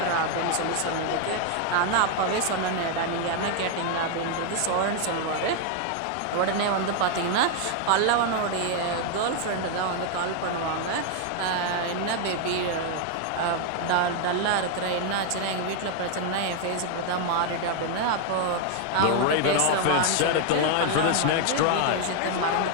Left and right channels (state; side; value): different; both; correlation 0.01